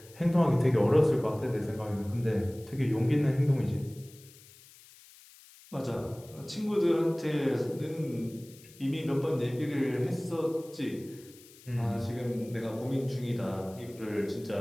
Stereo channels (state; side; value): noise; left; hiss, 23 dB below the sound